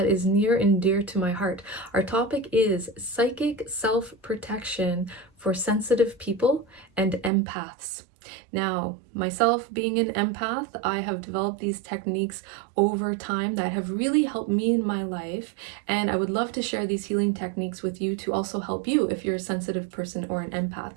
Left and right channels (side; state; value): left; drops out; at 7.3 s